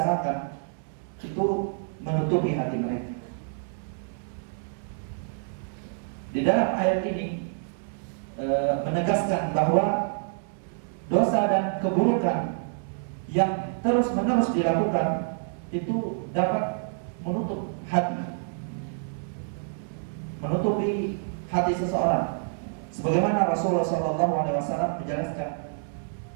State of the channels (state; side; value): silent; left; digital silence